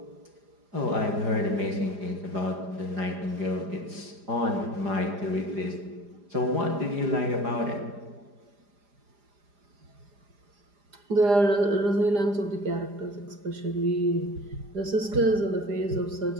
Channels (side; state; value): left; late; 4.9 ms